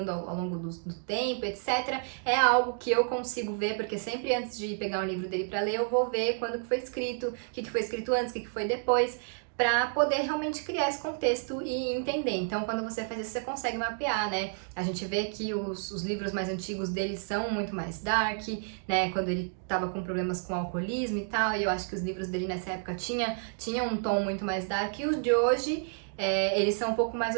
ao longo do tempo, etc. É algo que eu consigo ver, porque sempre antes de pegar um livro dele para ler, eu vou ver quando que foi escrito, o que foi escrito antes, o que foi depois, para poder realmente criar esse contexto e entender. Então, quando você faz isso, você consegue mapear, né? A gente vê que os livros mais antigos dele são muito mais dark, né? Quando ele tava com problemas com alcoolismo e tal, e eu acho que os livros dele nessa época tinham um tom muito mais dark, e os de hoje, eles são um pouco mais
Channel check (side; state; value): left; silent; 58 dB below the other